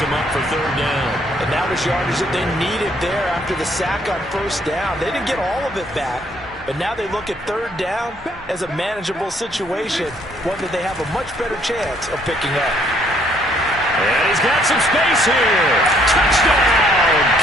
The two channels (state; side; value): normal; both; correlation 0.66